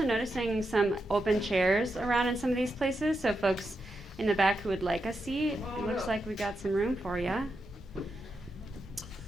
noticing some open chairs around in some of these places, so folks in the back who would like a seat, it looks like we got some room for you.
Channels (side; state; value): both; normal; correlation 0.86